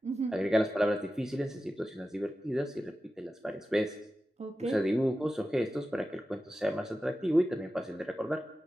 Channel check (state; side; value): normal; both; correlation 0.93